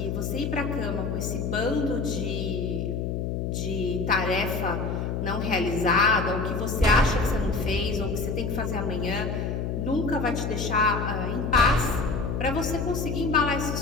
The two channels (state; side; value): noise; left; hum, 2 dB below the sound